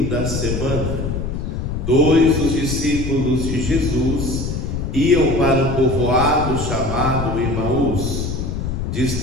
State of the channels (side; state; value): left; noise; rumble, 3 dB below the sound